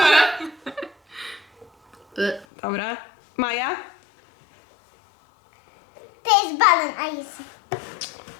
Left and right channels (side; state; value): right; drops out; at 2.5 s